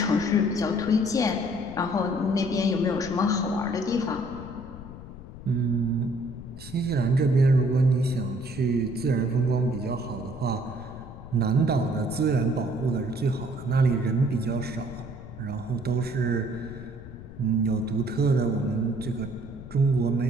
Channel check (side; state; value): left; noise; rumble, 14 dB below the sound